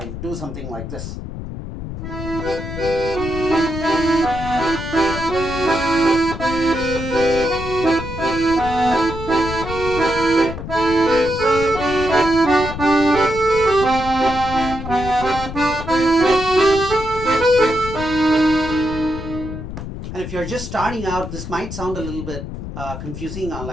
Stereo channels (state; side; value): noise; left; rumble, 8 dB below the sound